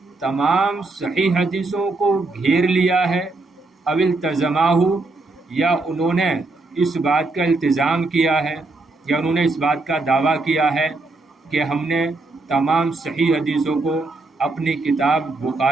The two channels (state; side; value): quieter; left; 3.3 dB